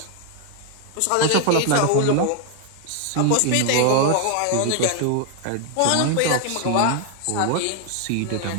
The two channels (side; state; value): both; different; correlation 0.00